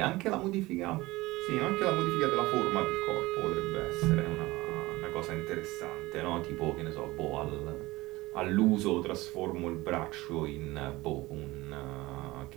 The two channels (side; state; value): left; quieter; 20.0 dB